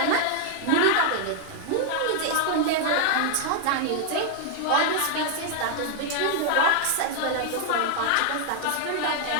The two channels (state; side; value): different; both; correlation 0.00